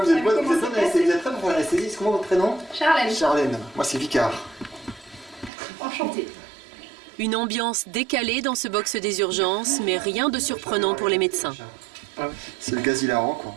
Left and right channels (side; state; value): left; drops out; at 5.5 s